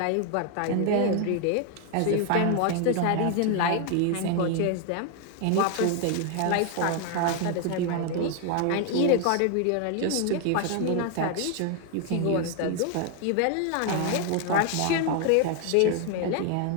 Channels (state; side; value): different; both; correlation 0.01